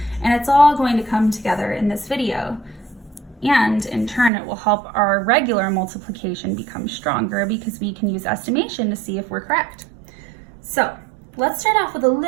and it's all going to come together in this video. And in turn, it will help our regular multiplication become stronger because we can use estimation to see if we're correct. So let's start off with a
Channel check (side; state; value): left; drops out; at 4.3 s